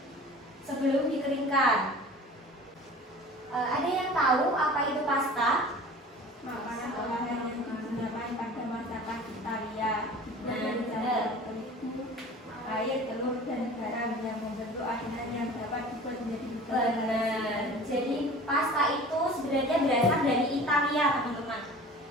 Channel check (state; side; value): normal; both; correlation 0.42